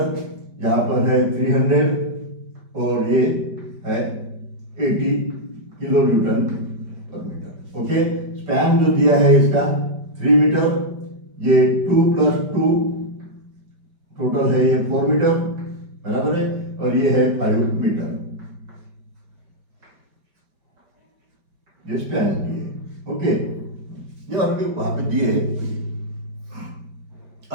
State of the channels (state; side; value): late; left; 5.1 ms